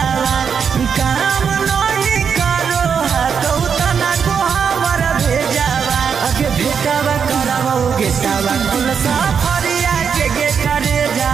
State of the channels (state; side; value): quieter; left; 6.8 dB